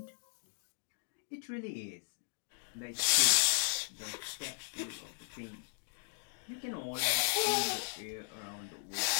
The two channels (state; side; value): silent; right; digital silence